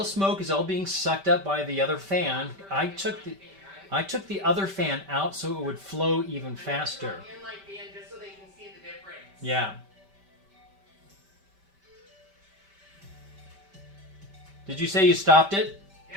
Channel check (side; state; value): left; late; 5.1 ms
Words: smoke is all being sucked up by the other fan. I took the other fan out so it would flow even faster. Just so they can see the difference. Yeah. Did you say you stopped it? Yeah,